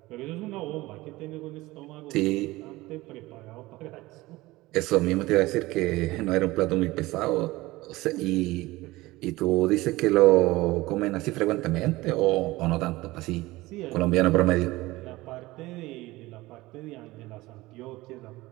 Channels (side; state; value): left; quieter; 19.5 dB